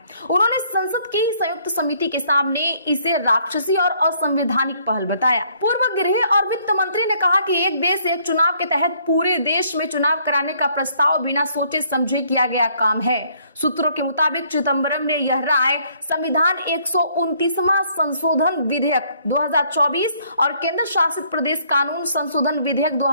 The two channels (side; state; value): both; inverted; correlation -0.65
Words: उन्होंने संसद की संयुक्त समिति के सामने इसे राक्षसी और असंवैधानिक पहल बताया। पूर्व गृह और वित्त मंत्री ने कहा कि एक देश एक चुनाव के तहत पूरे देश में चुनाव कराने का प्रस्ताव बिना सोचे समझे किया गया काम है। सूत्रों के मुताबिक चिदंबरम चिदम्बरम ने यह राय संविधान 129वां संशोधन विधेयक 2024 और केंद्र शासित प्रदेश कानून संशोधन विधेयक